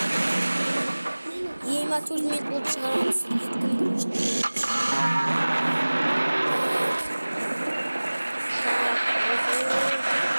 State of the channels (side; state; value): both; inverted; correlation -1.00